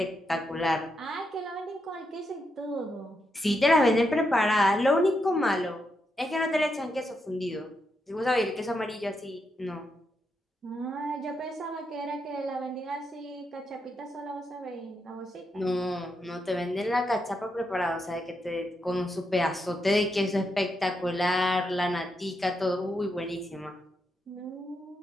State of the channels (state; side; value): normal; both; correlation 0.83